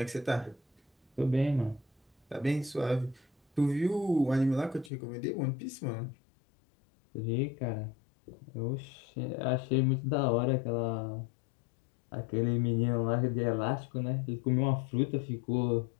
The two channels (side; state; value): right; drops out; at 4.9 s